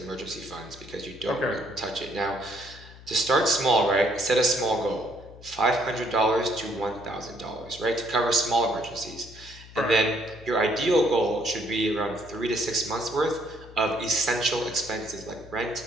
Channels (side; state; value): left; noise; hum, 19 dB below the sound